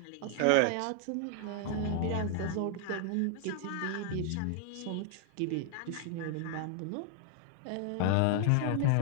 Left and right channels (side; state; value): both; different; correlation 0.00